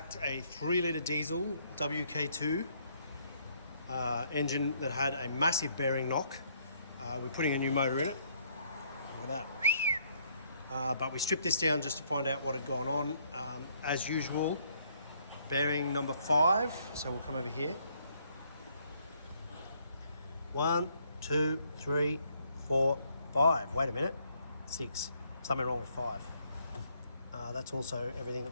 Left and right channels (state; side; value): inverted; both; correlation -0.68